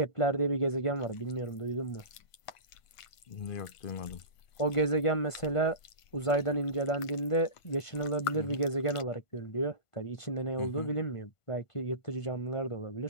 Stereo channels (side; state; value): right; late; 1.5 ms